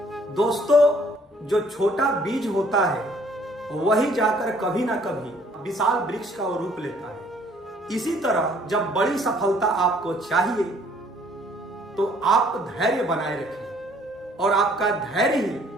दोस्तों, जो छोटा बीज होता है वही जाकर कभी ना कभी विशाल वृक्ष का रूप लेता है। इसी तरह जब बड़ी सफलता आपको चाहिए तो आप धैर्य बनाए रखिए, और आपका धैर्य ही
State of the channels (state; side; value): normal; both; correlation 0.60